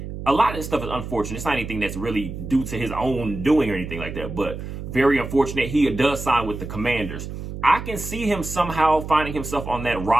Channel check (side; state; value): right; noise; hum, 8 dB below the sound